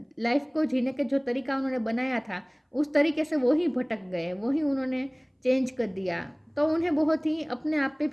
लाइफ को जीने के जो तरीका उन्होंने बनाया था, उस तरीके से वो ही भटक गए, वो ही उन्होंने चेंज कर दिया। तो उन्हें बहुत ही अपने आप पे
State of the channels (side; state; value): both; identical; correlation 1.00